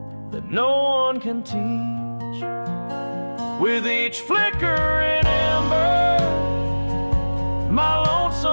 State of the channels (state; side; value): inverted; both; correlation -1.00